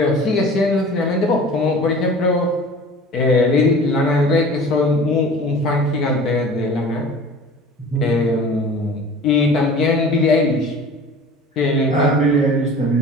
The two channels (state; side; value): normal; both; correlation 0.42